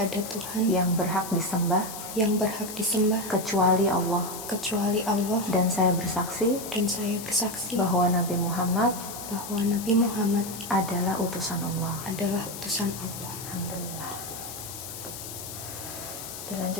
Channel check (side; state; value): left; noise; hiss, 10 dB below the sound